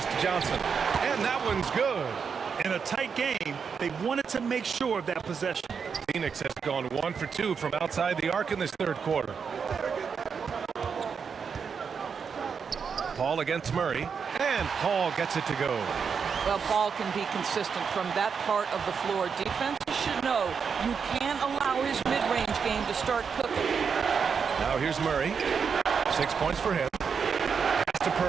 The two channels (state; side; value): quieter; left; 6.2 dB